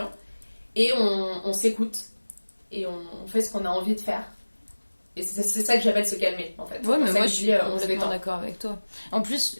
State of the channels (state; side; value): inverted; both; correlation -1.00